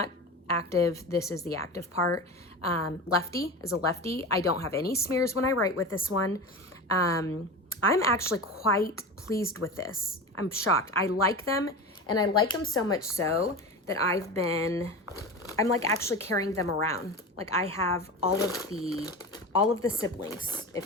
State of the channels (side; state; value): both; normal; correlation 0.28